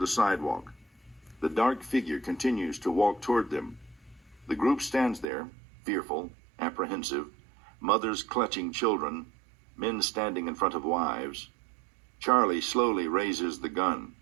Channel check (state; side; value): drops out; left; at 5.2 s